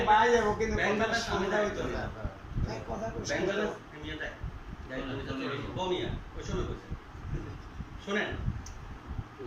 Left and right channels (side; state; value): both; identical; correlation 1.00